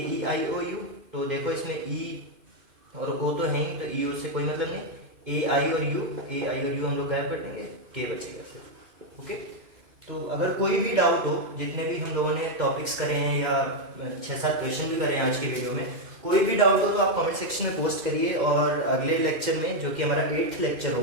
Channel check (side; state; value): left; late; 2.5 ms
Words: ई आई ओ यू, तो देखो इसमें ई और ओ तो है ही, तो ई ओ से कोई मतलब नहीं, ए आई और यू, ए आई और यू हम लोग गायब कर देंगे, के बचेगा सिर्फ। ओके, तो अगर कोई भी डाउट हो, जितने भी हम लोगों ने टॉपिक्स करे हैं या 6-7 क्वेश्चन भी करे हैं आज की वीडियो में, कोई भी डाउट हो तो आप कमेंट सेक्शन में पोस्ट करिए, और अगले लेक्चर में जो कि हमारा 8th लेक्चर